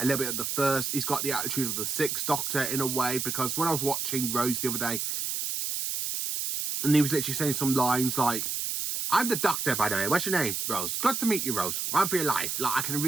little bit of the 1st. He's got the attitude of the 6th Doctor in a way, because when I was watching Rose the other day, and he was literally saying some lines like, I'm the Doctor, by the way. What's your name? Rose. Good to meet you, Rose. Run for your life. Like, I can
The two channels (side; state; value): right; noise; hiss, 2 dB below the sound